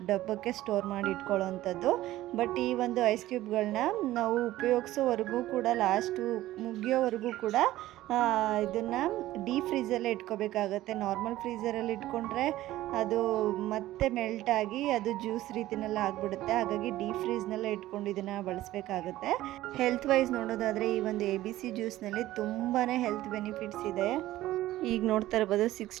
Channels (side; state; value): left; quieter; 15.4 dB